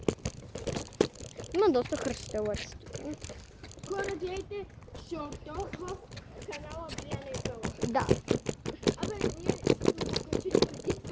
Има доста хръстелъци. Хора, гледайте шорта в канала Бияна и Пела. Да. Абе, ние сме го качили преди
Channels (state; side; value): identical; both; correlation 1.00